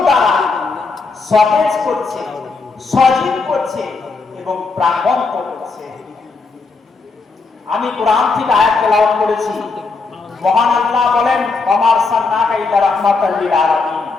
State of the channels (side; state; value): right; quieter; 4.1 dB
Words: দ্বারা সতেজ করছে, সজীব করছে এবং প্রাণবন্ত করছে। আমি কোরআন থেকে আয়াত তেলাওয়াত করেছি। মহান আল্লাহ বলেন, ওয়া মা আরসালনাকা ইল্লা রাহমাতাল লিল আলামিন।